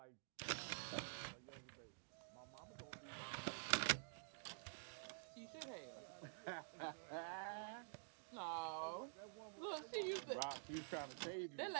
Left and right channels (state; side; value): silent; left; digital silence